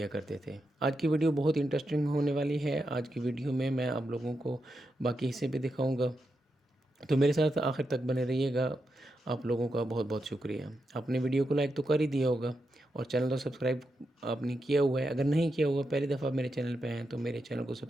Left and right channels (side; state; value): both; normal; correlation 0.86